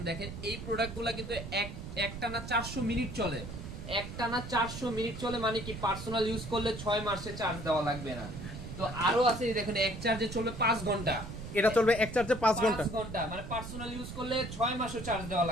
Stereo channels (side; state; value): right; noise; rumble, 9 dB below the sound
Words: দেখেন এই প্রোডাক্টগুলো কিন্তু একটানা 400 মিনিট চলে। একটানা 400 মিনিট চলে মানে কি পার্সোনাল ইউজ করলে 6 মাসে চার্জ দেওয়া লাগবে না। তো আরো আছে দেখেন, এক চার্জে চলবে 5 ঘন্টা। এটা চলবে এক চার্জে 5 ঘন্টা, মানে পার্সোনাল ইউজ করলে 6 মাসও চার্জ দেওয়া